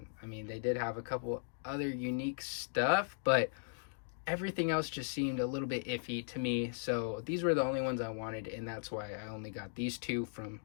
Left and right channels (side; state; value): right; silent; digital silence